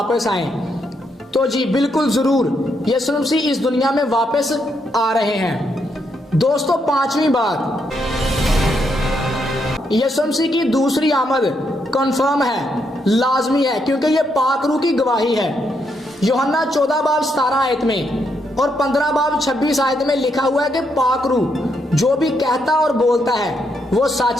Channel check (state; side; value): normal; both; correlation 0.78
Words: आए। तो जी बिल्कुल जरूर यीशु मसीह इस दुनिया में वापस आ रहे हैं। दोस्तों पांचवी बात, यीशु मसीह की दूसरी आमद कंफर्म है, लाजमी है, क्योंकि ये पाक रूह की गवाही है। यूहन्ना 14 बाब 17 आयत में और 15 बाब 26 आयत में लिखा हुआ है कि पाक रूह जो भी कहता और बोलता है वो